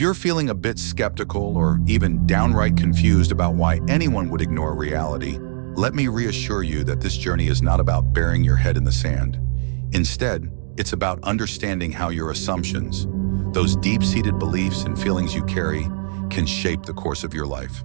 you're feeling a bit skeptical or even downright confused about why anyone would ignore reality, let me reassure you that this journey is not about burying your head in the sand. Instead, it's about understanding how your assumptions, those deep-seated beliefs and feelings you carry, can shape the course of your life.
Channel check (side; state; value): left; silent; 65 dB below the other